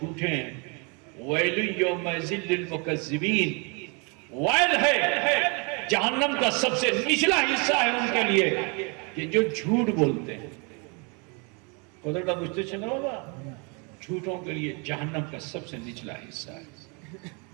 ہیں. وَيْلٌ يَوْمَئِذٍ لِّلْمُكَذِّبِينَ، وائل ہے، جہنم کا سب سے نچلا حصہ ہے ان کے لیے کہ جو جھوٹ بولتے ہیں. خدا کا پوچھتے چلنا ہوگا، جھوٹوں کے لیے جہنم کا سب سے نچلا حصہ ہے.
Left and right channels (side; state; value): left; quieter; 33.2 dB